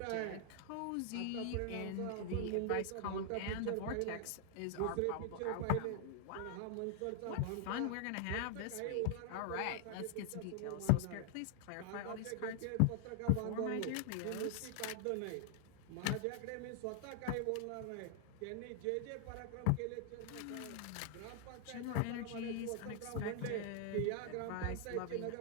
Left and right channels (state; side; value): different; both; correlation 0.00